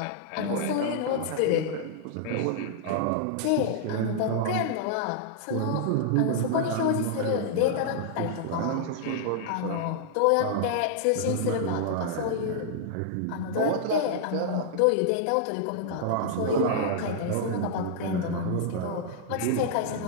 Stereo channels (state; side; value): different; both; correlation -0.01